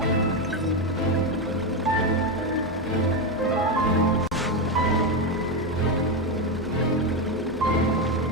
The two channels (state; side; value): normal; both; correlation 0.10